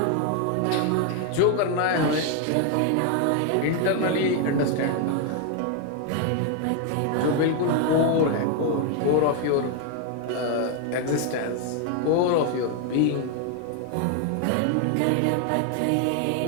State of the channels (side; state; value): both; different; correlation 0.01